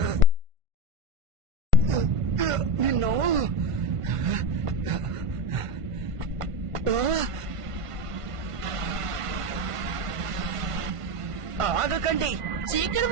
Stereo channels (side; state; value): left; late; 1.5 ms